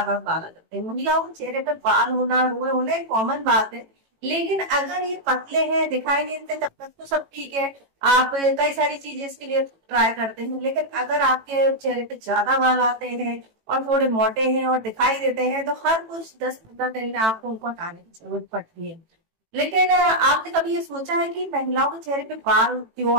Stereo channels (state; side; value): late; left; 18 ms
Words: बार बाल आ जाते हैं। महिलाओं के चेहरे पे बाल होना, रोए होना एक कॉमन बात है, लेकिन अगर ये पतले हैं, दिखाई नहीं देते, तब तक तो सब ठीक है। आप कई सारी चीजें इसके लिए ट्राई करते हैं, लेकिन अगर आपके चेहरे पे ज्यादा बाल आते हैं और थोड़े मोटे हैं और दिखाई देते हैं, तो हर कुछ 10-15 दिन में आपको उनको हटाने की जरूरत पड़ती है। लेकिन आपने कभी ये सोचा है कि महिलाओं के चेहरे पे बाल क्यों